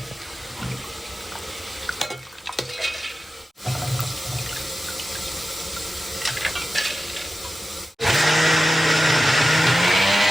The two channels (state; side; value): normal; both; correlation 0.93